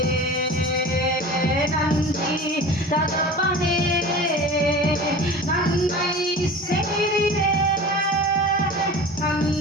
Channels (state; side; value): normal; both; correlation 0.36